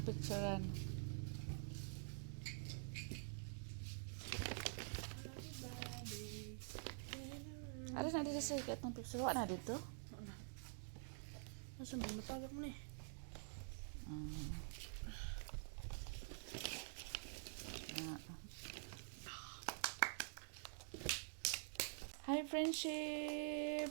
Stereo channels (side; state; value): left; silent; digital silence